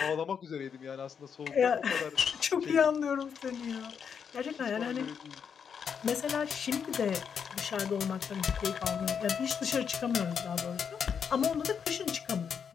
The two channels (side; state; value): right; quieter; 7.0 dB